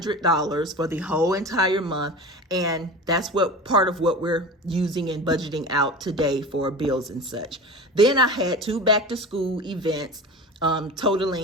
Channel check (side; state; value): both; normal; correlation 0.32